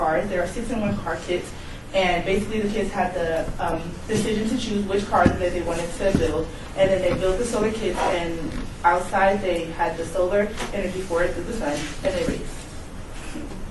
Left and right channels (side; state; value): both; identical; correlation 1.00